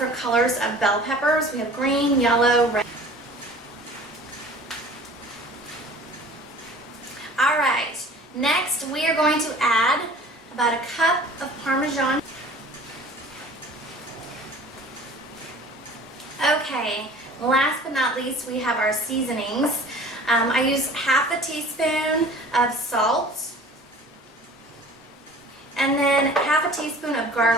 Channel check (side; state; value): both; normal; correlation 0.45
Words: colors of bell peppers. We have green, yellow, red. Alright, next we are going to add about a cup of Parmesan. Okay, last but not least we have our seasonings. I use half a teaspoon of salt and then half a teaspoon of